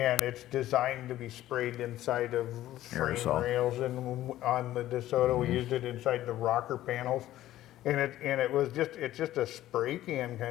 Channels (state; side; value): quieter; right; 14.1 dB